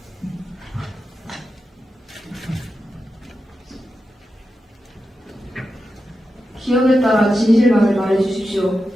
기억에 따라 진실만을 말해주십시오.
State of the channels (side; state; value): both; normal; correlation 0.90